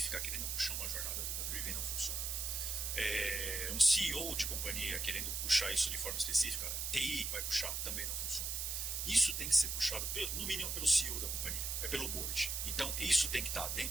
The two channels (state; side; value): noise; right; hiss, 1 dB below the sound